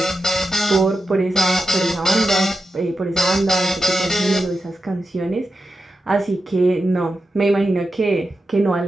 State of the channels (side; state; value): both; normal; correlation 0.90